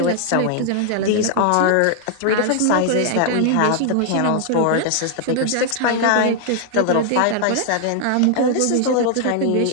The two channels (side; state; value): both; different; correlation 0.00